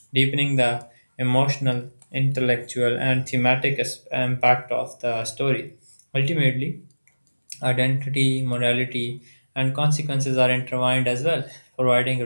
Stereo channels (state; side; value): inverted; both; correlation -1.00